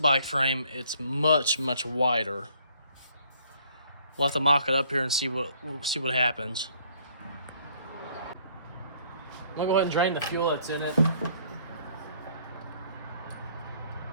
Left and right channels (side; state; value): both; inverted; correlation -0.62